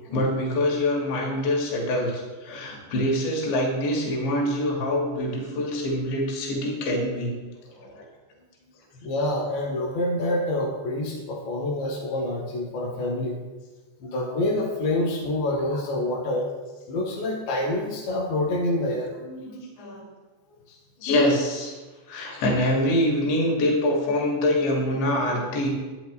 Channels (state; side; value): late; right; 14 ms